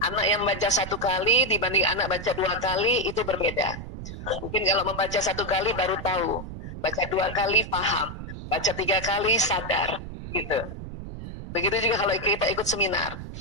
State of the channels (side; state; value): right; noise; rumble, 10 dB below the sound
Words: Anak yang baca 1 kali dibanding anak baca 2 kali itu berbeda. Mungkin kalau membaca 1 kali baru tahu, baca 2 kali paham. Baca 3 kali sadar, gitu. Begitu juga kalau kita ikut seminar.